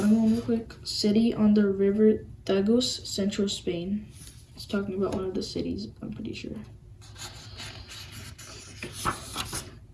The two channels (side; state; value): both; identical; correlation 1.00